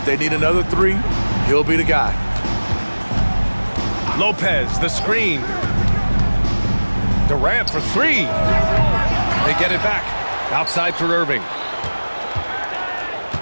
they need another three, he'll be the guy. Lopez, the screen. Durant for 3. They get it back. Outside for Irving.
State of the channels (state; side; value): inverted; both; correlation -1.00